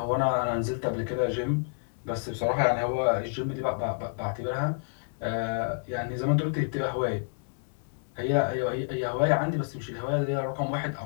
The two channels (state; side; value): silent; right; digital silence